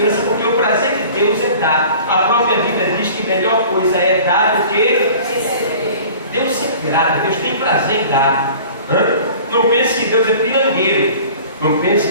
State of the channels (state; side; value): inverted; both; correlation -0.45